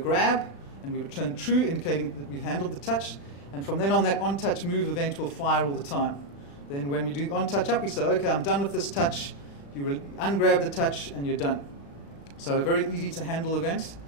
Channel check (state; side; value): late; right; 35 ms